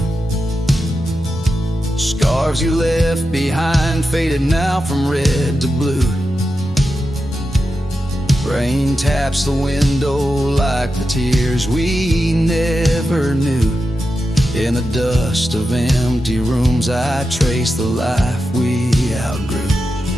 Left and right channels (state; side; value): normal; both; correlation 0.89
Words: Scarves you left behind, faded now from red to blue. Rain taps the window like the tears we never knew. In the dust of empty rooms I trace the life we outgrew.